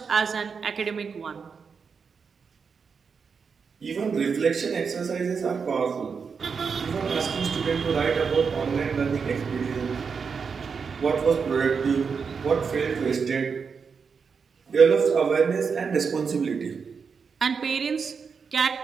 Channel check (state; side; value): quieter; left; 5.7 dB